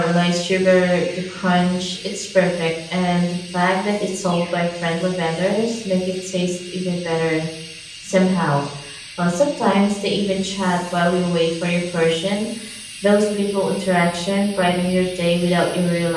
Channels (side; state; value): both; identical; correlation 1.00